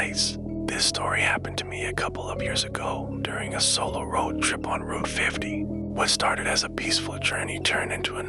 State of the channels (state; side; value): identical; both; correlation 1.00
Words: This story happened to me a couple of years ago during a solo road trip on Route 50. What started as a peaceful journey turned into a